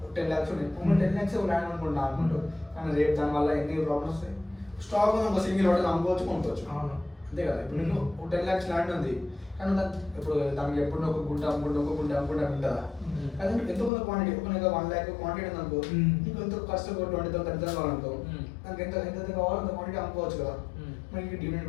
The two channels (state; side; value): drops out; right; at 13.9 s